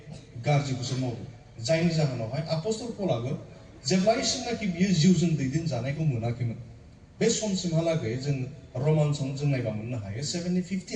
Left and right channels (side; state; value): both; identical; correlation 1.00